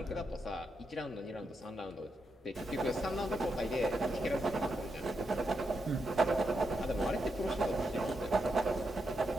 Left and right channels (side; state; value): both; normal; correlation 0.84